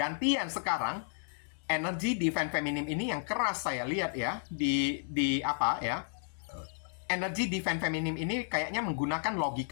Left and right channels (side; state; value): right; silent; digital silence